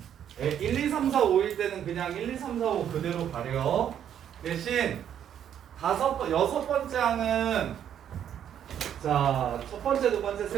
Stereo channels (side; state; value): left; quieter; 9.6 dB